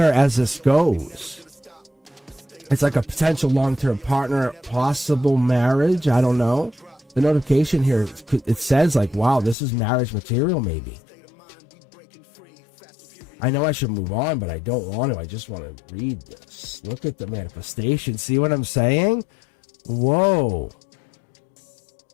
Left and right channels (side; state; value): right; drops out; at 9.6 s